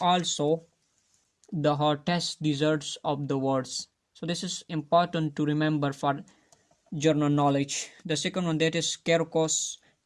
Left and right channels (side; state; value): both; identical; correlation 1.00